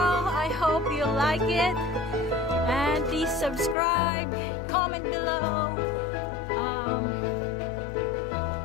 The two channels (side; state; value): right; drops out; at 3.8 s